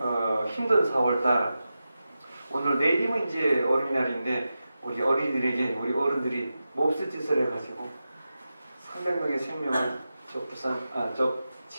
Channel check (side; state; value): both; inverted; correlation -0.92